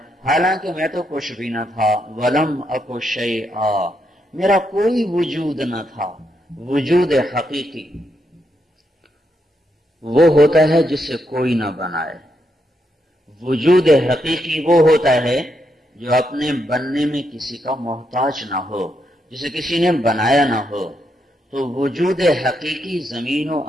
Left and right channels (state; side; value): normal; both; correlation 0.80